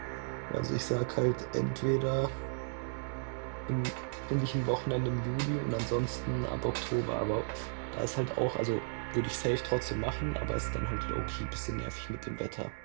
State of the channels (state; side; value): silent; left; digital silence